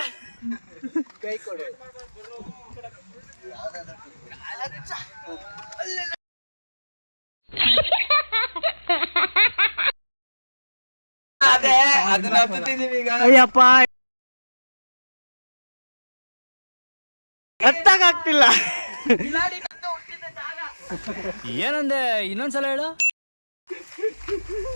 ಕೈ ಕೊಡು. ಅದೇ ಅದನ್ನ ಹತ್ತಿದೀವಿ ಈಗ. ಅಯ್ಯಪ್ಪ ಹತ್ತಾಗ್ತಿಲ್ಲ. ಏನಂದೆ ಇನ್ನೊಂದ್ಸಲ ಹೇಳು.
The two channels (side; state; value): both; inverted; correlation -1.00